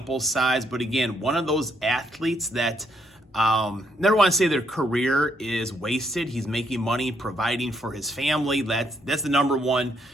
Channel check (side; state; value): both; normal; correlation 0.73